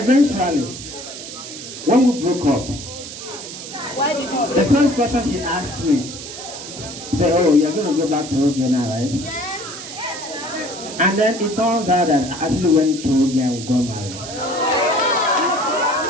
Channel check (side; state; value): right; noise; hiss, 11 dB below the sound